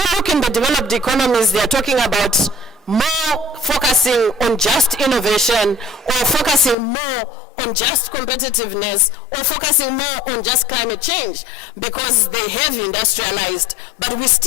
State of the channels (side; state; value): right; drops out; at 6.8 s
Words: look in the developed economies, they are talking about more focusing on just innovation, or focusing more on just competitiveness, or focusing more on just climate change, because they have industrialized. But we